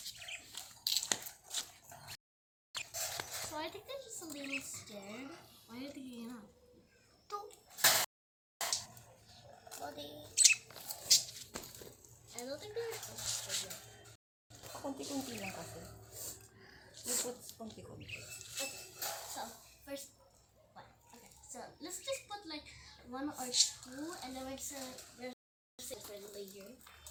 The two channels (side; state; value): both; identical; correlation 1.00